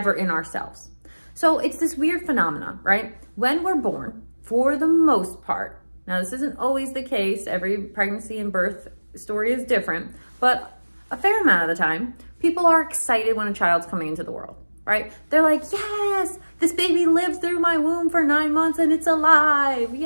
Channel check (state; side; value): inverted; both; correlation -1.00